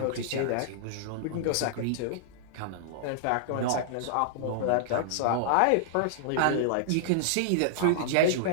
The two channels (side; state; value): both; different; correlation -0.01